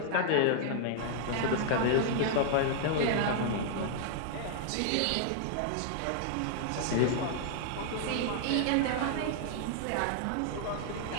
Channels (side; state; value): both; different; correlation -0.01